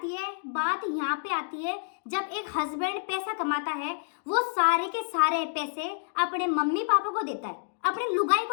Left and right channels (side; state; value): right; silent; digital silence